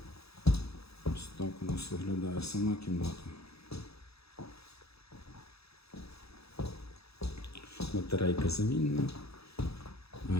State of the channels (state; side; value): late; right; 0.78 ms